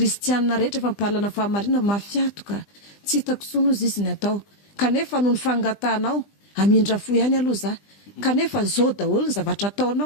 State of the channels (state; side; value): late; right; 20 ms